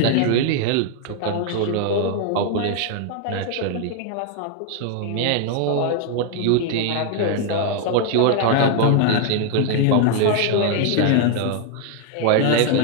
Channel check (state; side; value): different; both; correlation 0.00